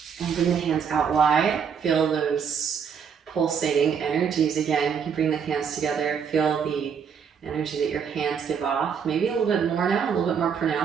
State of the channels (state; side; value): quieter; left; 7.0 dB